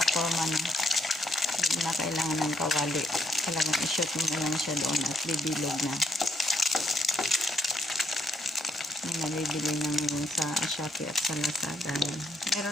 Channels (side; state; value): both; normal; correlation 0.73